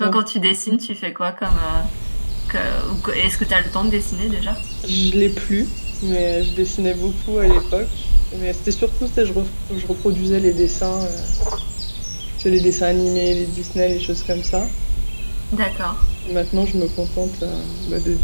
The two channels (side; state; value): both; inverted; correlation -1.00